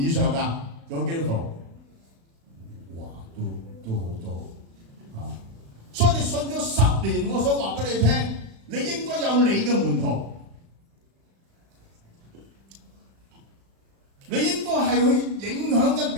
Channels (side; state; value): left; late; 36 ms